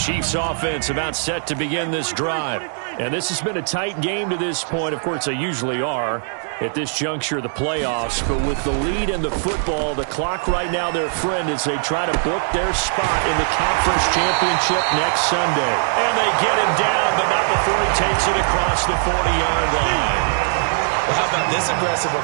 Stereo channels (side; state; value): left; silent; 65 dB below the other